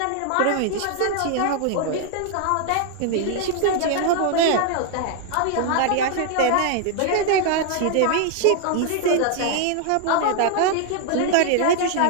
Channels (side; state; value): both; different; correlation 0.00